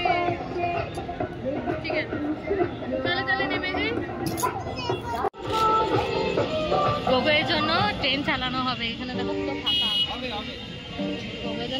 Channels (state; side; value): identical; both; correlation 1.00